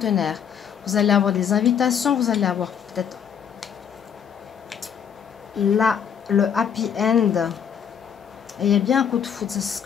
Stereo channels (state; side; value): quieter; right; 7.9 dB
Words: Vous allez avoir des invitations, vous allez avoir peut-être là le happy end, et il y a bien un coup de foudre. C'est ce